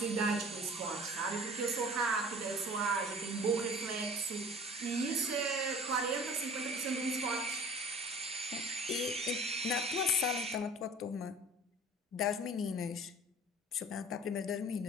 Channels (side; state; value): both; normal; correlation 0.44